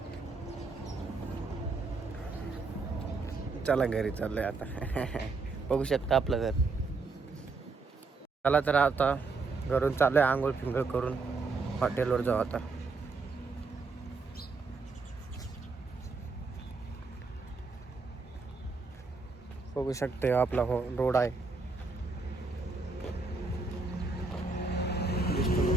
चला घरी चाललोय आता. बघू शकता आपलं घर. चला तर आता घरून चाललोय आंघोळ फिंगळ करून हॉटेलवर जाऊ आता. बघू शकते आपला रोड आहे.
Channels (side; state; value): left; quieter; 4.1 dB